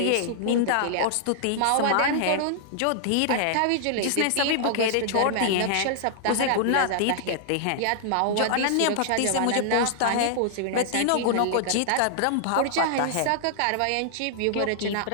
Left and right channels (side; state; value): both; different; correlation -0.01